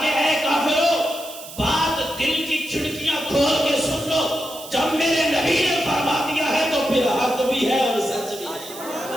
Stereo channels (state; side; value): noise; right; hiss, 14 dB below the sound